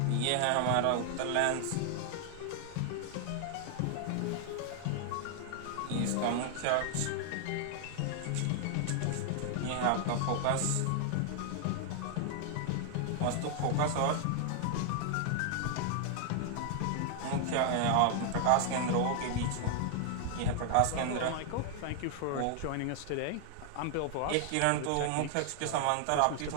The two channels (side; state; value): both; different; correlation 0.00